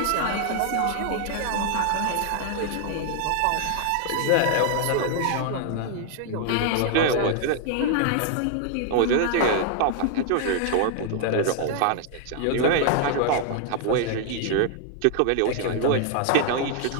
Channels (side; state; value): both; different; correlation 0.00